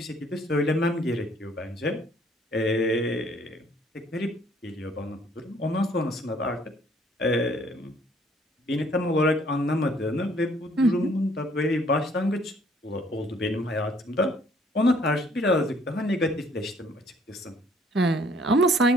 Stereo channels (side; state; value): both; normal; correlation 0.61